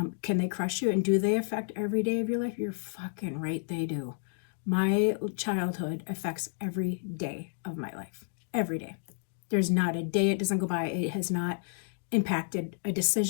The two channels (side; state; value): right; silent; digital silence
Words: Can they crush you, and do they affect every day of your life? You're fucking right, they do. My childhood affects every day of my life. Every day. There's not a day it doesn't go by it has not impacted a